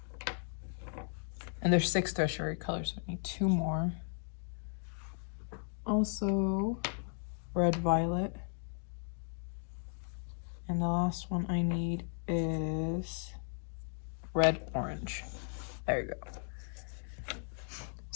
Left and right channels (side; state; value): right; silent; 54 dB below the other